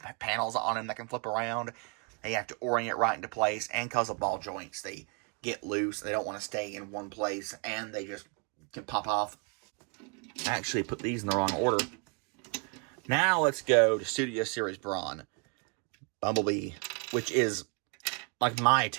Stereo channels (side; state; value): left; quieter; 34.4 dB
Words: panels on him that can flip around. They have to orient right into place, and because of ball joints, they get loose. They don't want to stay in one place, and they just can pop off. I actually put these in the wrong order. Now let's go to Studio Series Brawn. Bumblebee, which is like my